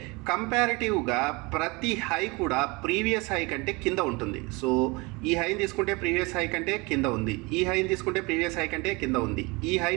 కంపారిటివ్గా ప్రతి హై కూడా ప్రీవియస్ హై కంటే కింద ఉంటుంది. సో ఈ హైని తీసుకుంటే ప్రీవియస్ హై కంటే కింద ఉంది, ఈ హైని తీసుకుంటే ప్రీవియస్ హై కంటే కింద ఉంది, ఈ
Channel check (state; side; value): quieter; left; 26.1 dB